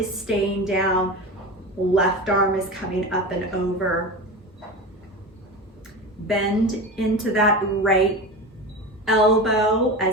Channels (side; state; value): both; normal; correlation 0.26